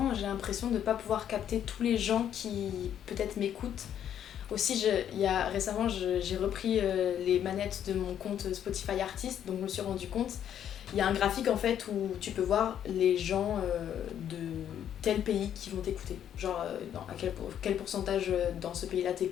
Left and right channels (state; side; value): quieter; right; 9.8 dB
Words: j'ai l'impression de ne pas pouvoir capter tous les gens qui peut-être m'écoutent. Aussi, récemment, j'ai repris les manettes de mon compte Spotify Artist, donc je me suis rendu compte. Il y a un graphique en fait où tu peux voir les gens de tel pays qui vont t'écouter. Genre à quel pourcentage dans ce pays-là